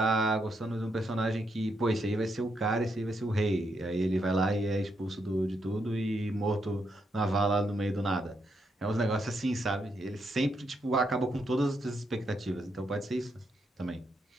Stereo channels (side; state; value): both; normal; correlation 0.79